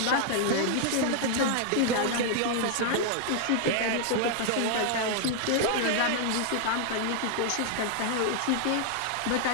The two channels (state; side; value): different; both; correlation 0.00